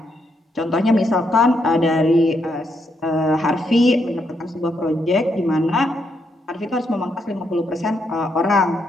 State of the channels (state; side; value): normal; both; correlation 0.78